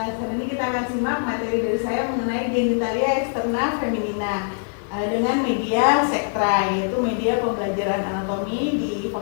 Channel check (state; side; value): silent; right; digital silence